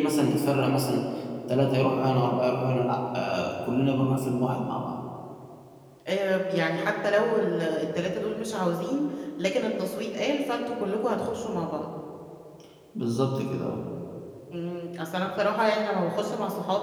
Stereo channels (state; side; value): identical; both; correlation 1.00